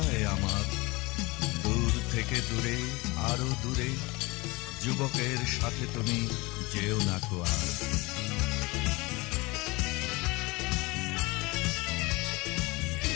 আমার। দূর থেকে দূরে, আরো দূরে, যুবকের সাথে তুমি যেও না কো আর।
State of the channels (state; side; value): quieter; right; 24.1 dB